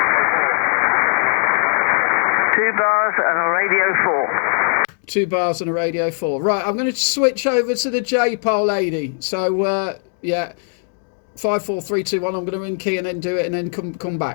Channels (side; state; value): right; silent; 61 dB below the other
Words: 2 bars and a radio 4. 2 bars and a radio 4. Right, I'm going to switch over to the J-pole, lady. So, yeah, 5, 4, 3, 2, 1. I'm going to in key and then do it and then come